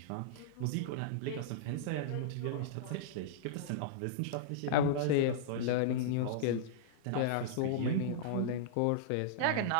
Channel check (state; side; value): different; both; correlation -0.02